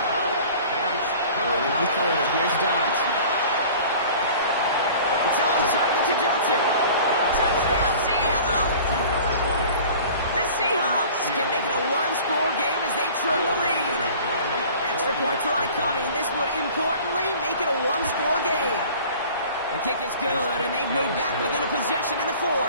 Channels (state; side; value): inverted; both; correlation -0.45